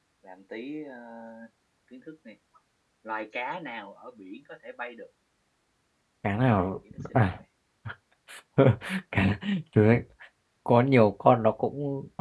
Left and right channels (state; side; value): identical; both; correlation 1.00